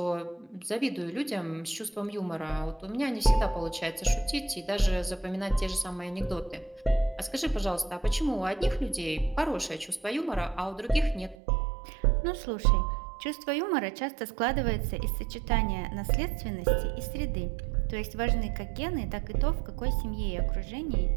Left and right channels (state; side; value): drops out; left; at 11.4 s